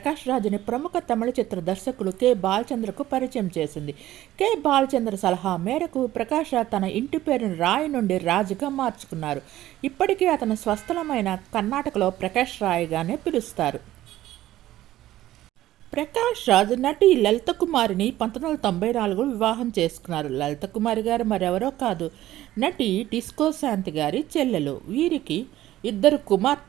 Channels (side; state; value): left; quieter; 14.5 dB